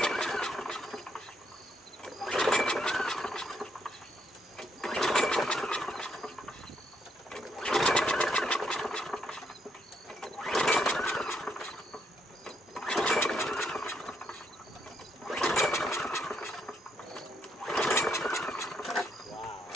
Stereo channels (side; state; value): both; normal; correlation 0.75